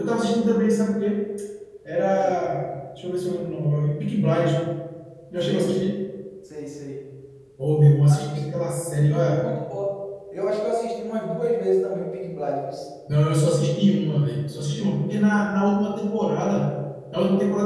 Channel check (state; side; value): identical; both; correlation 1.00